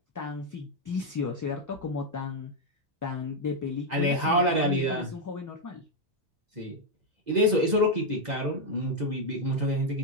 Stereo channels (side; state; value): left; late; 2.0 ms